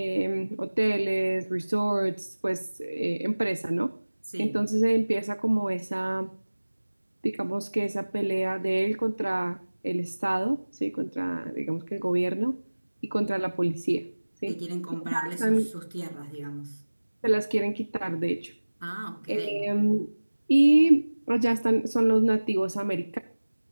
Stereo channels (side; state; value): both; inverted; correlation -1.00